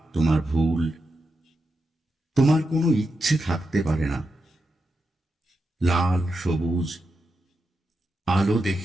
তোমার ভুল। তোমার কোনো ইচ্ছে থাকতে পারে না। লাল সবুজ আলো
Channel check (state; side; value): normal; both; correlation 0.87